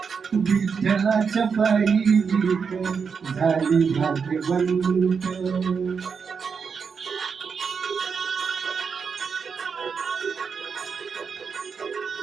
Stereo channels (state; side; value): quieter; left; 5.9 dB